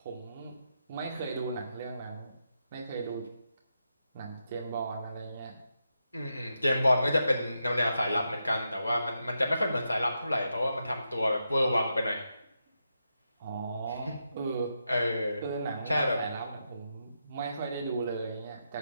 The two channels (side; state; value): both; inverted; correlation -0.84